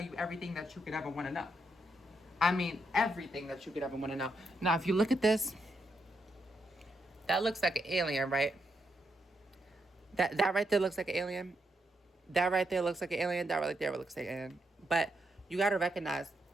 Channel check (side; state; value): both; normal; correlation 0.81